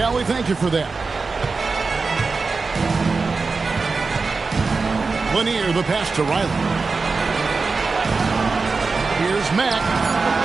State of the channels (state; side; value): quieter; left; 4.3 dB